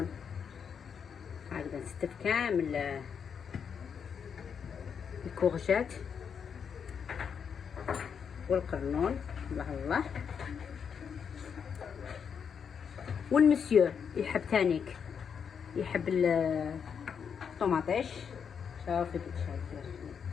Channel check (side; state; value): right; quieter; 7.0 dB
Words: هكذا. نستف كامل الكورجات والقرنون. الله الله. والمسيو يحب تانيك يحب الطوماطيش. شوفي كي شايفه